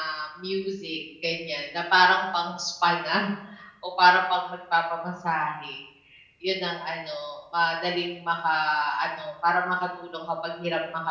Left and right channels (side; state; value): both; identical; correlation 1.00